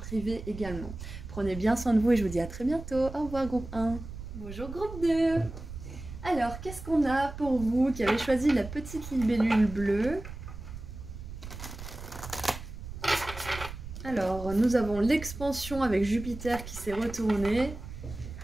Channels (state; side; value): noise; right; rumble, 11 dB below the sound